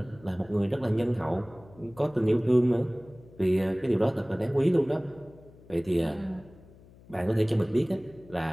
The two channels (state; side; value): noise; left; hum, 24 dB below the sound